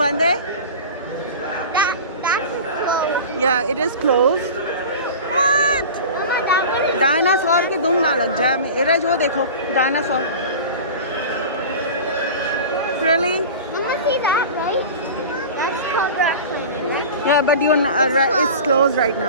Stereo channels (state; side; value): inverted; both; correlation -0.34